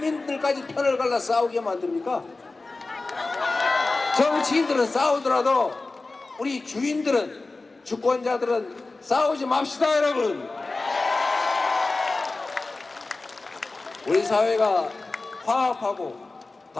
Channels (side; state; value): right; quieter; 3.4 dB